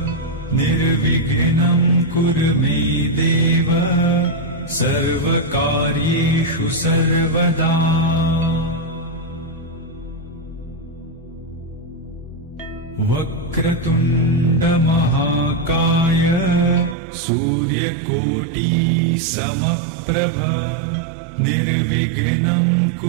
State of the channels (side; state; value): left; drops out; at 16.9 s